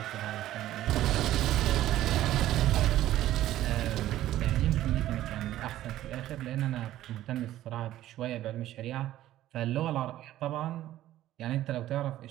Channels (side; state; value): left; quieter; 13.8 dB